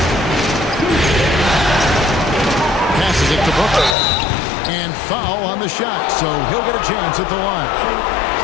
Passes it to Booker. And foul on the shot, so he'll get a chance at the line.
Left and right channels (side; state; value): right; drops out; at 4.0 s